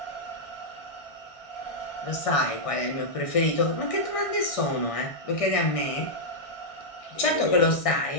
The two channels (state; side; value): late; right; 1.6 ms